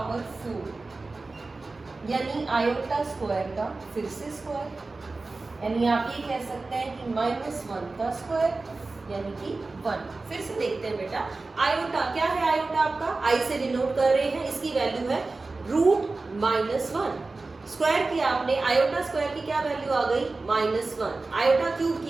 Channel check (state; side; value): quieter; left; 3.5 dB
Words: 4, यानी आयोटा स्क्वायर का फिर से स्क्वायर, यानी आप ये कह सकते हैं कि -1 का स्क्वायर यानी कि 1। फिर से देखते हैं बेटा। आयोटा क्या है? आयोटा आपका आई से डिनोट कर रहे हैं, इसकी वैल्यू है √-1। स्क्वायर की आपने, आयोटा स्क्वायर की क्या वैल्यू आ गई? -1। आयोटा क्यूब